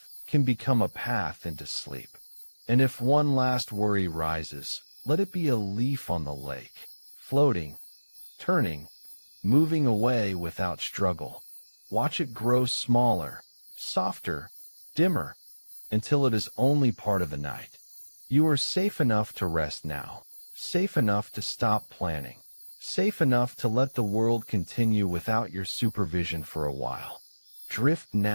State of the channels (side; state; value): both; inverted; correlation -1.00